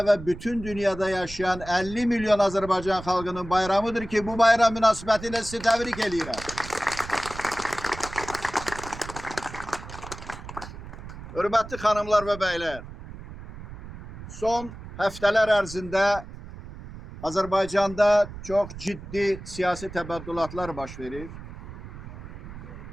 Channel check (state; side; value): noise; right; rumble, 13 dB below the sound